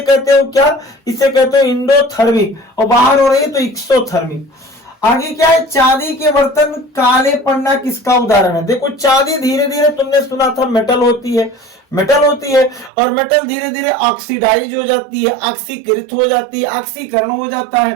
कहते हो क्या? इसे कहते हो इंडोथर्मिक, और बाहर हो रही है तो एक्सोथर्मिक। आगे क्या है? चांदी के बर्तन काले पड़ना किसका उदाहरण है? देखो चांदी धीरे धीरे, तुमने सुना था मेटल होती है, मेटल होती है, और मेटल धीरे धीरे ऑक्सीडाइज हो जाती है, ऑक्सीकृत हो जाती है, ऑक्सीकरण हो जाता है,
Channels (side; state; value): left; drops out; at 12.9 s